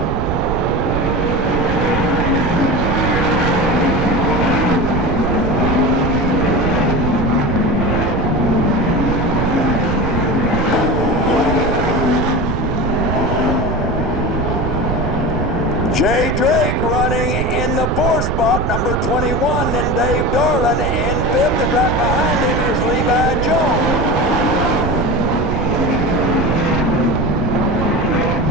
Jay Drake running in the fourth spot, number 21, and Dave Darlin in fifth, and right behind him is Levi Jones.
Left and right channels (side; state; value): right; noise; rumble, 1 dB below the sound